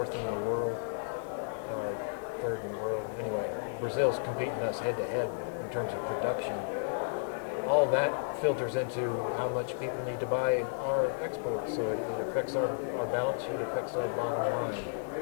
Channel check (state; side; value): silent; right; digital silence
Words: in the world, or third in the world. Anyway, Brazil's competing us head to head in terms of production. All that filters into how much people need to buy our exports. So it affects our balance sheet, affects our bottom line,